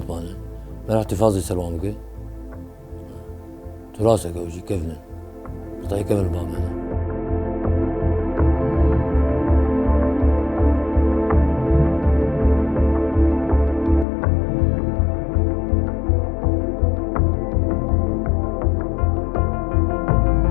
مانا ما راح تفاضي سلوامك تراسك أو شيء كيفنا قطعي كيف البامانة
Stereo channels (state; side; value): drops out; right; at 14.1 s